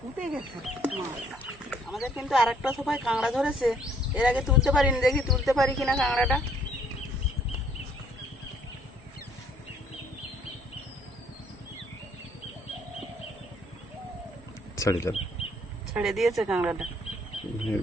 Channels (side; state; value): both; normal; correlation 0.64